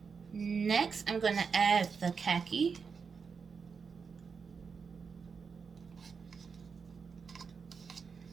Next, I'm going to add the khaki.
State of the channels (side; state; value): left; quieter; 5.6 dB